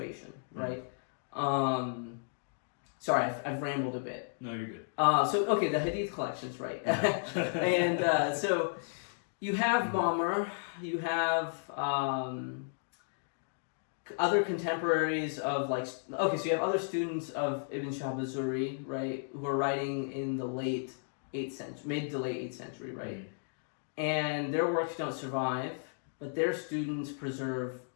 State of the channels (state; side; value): silent; right; digital silence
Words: right? Sorry, I've rambled a bit. No, you're good. Okay, the Hadith collections, right? And so you have Ma'mar, you have other contemporaries of like, okay, so you have other students of Ibn Shihab az-Zuhri, right, who are writing in the late 8th century, mid to late 8th century, right? And their works don't survive, but their students preserve